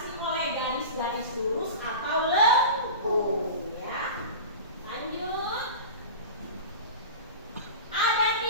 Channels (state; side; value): inverted; both; correlation -0.32